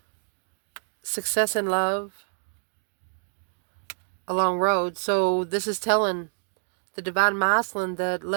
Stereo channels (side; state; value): left; silent; digital silence